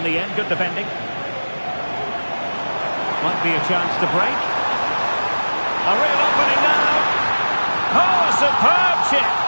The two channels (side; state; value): both; inverted; correlation -1.00